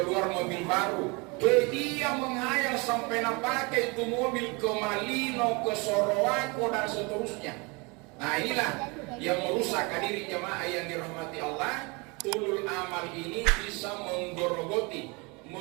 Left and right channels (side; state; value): left; quieter; 28.6 dB